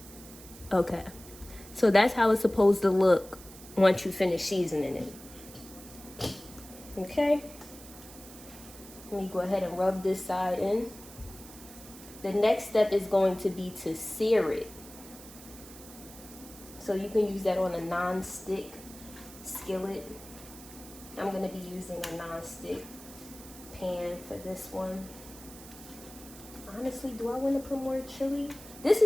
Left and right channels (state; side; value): noise; right; hiss, 17 dB below the sound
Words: Okay, so that's how it's supposed to look once you finish seasoning it. Okay, let me go ahead and rub this side in. The next step is going to be to sear it. So you can use that on a non-stick skillet. I'm going to be using a non-stick pan for this one. Honestly, do I want to put more chili? This